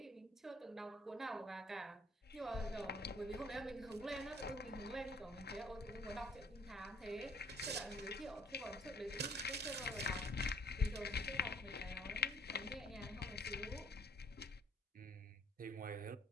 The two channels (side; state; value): both; normal; correlation 0.61